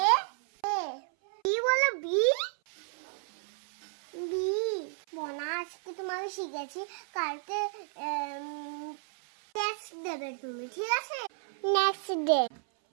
এ এ বি, বলো বি বি। মনা আজকে তোমাকে শিখেছি, কালকে টেস্ট দেবে তুমি, ঠিক আছে? নেক্সট ডে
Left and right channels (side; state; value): left; silent; 56 dB below the other